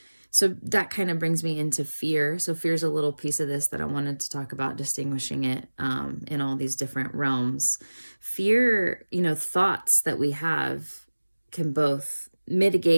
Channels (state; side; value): inverted; both; correlation -1.00